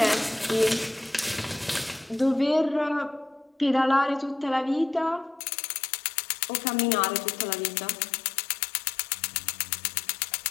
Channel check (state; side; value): drops out; right; at 5.4 s